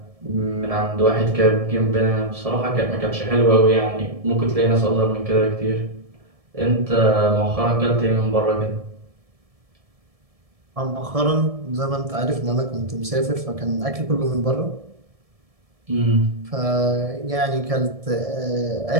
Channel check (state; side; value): late; left; 1.7 ms